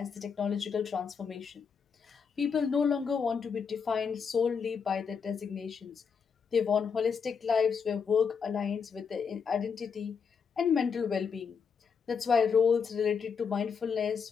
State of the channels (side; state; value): right; quieter; 6.2 dB